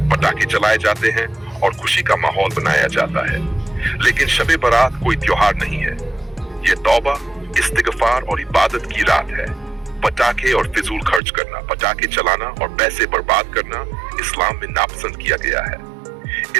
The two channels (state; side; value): drops out; left; at 11.2 s